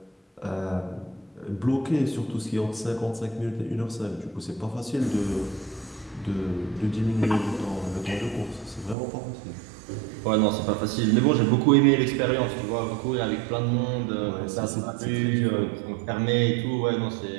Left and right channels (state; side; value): drops out; left; at 9.0 s